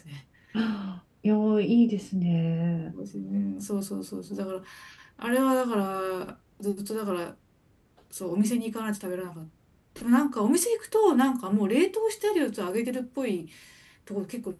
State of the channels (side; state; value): both; identical; correlation 1.00